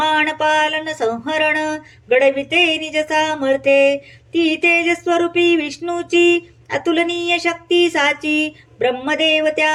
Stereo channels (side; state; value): both; identical; correlation 1.00